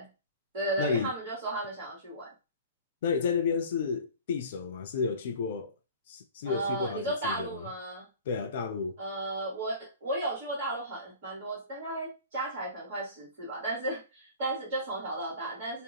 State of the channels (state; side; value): inverted; both; correlation -0.42